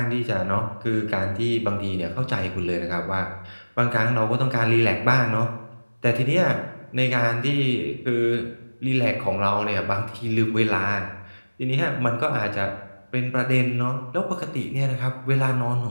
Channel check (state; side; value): inverted; both; correlation -1.00